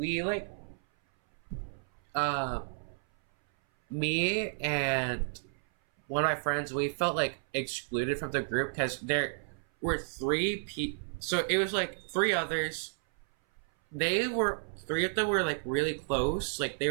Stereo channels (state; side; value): silent; left; 57 dB below the other